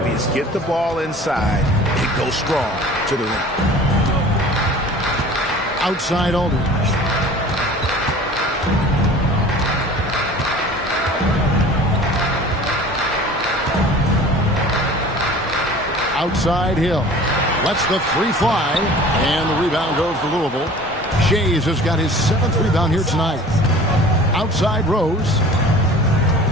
Get the ball inside and go strong to the rim. Outside Aldridge. Outside Hill. Lets the three fly. And the rebound goes to Louisville. Shays has got his 7th rebound here tonight. Outside Rose.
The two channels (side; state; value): both; normal; correlation 0.44